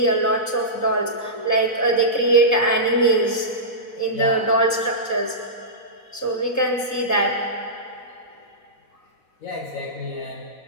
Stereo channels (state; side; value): late; right; 4.1 ms